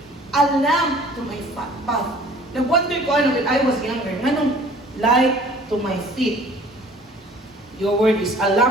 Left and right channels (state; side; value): normal; both; correlation 0.51